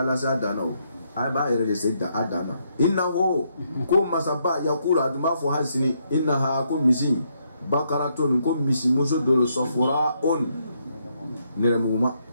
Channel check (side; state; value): both; inverted; correlation -0.76